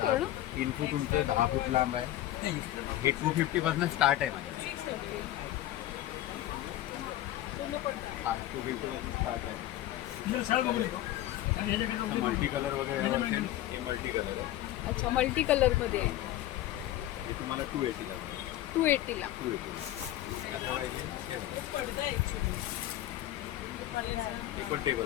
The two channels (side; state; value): right; quieter; 14.1 dB